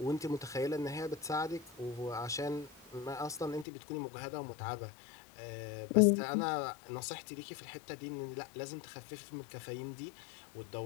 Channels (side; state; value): right; drops out; at 3.7 s